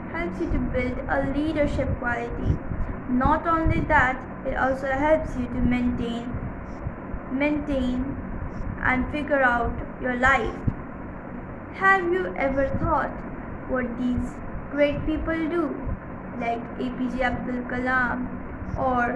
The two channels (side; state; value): both; identical; correlation 1.00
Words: helps you to build a leadership quality. Not only that, it also helps you to maintain and figure out your life. Have you ever thought what these great people do, like APJ Abdul Kalam